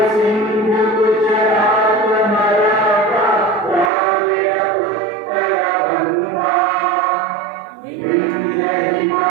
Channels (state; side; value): drops out; left; at 3.9 s